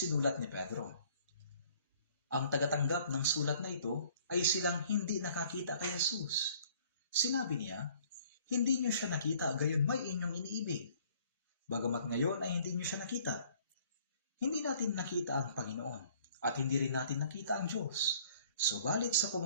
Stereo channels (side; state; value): both; inverted; correlation -0.57